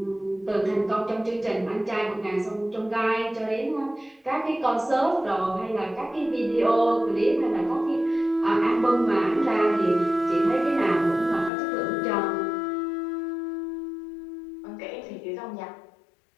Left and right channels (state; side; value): drops out; right; at 11.5 s